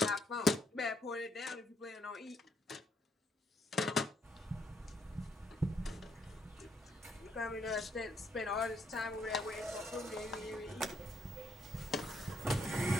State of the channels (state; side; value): normal; both; correlation 0.72